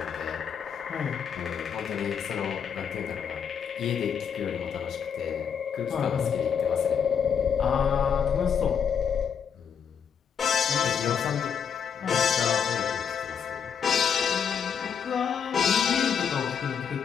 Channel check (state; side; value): quieter; right; 7.3 dB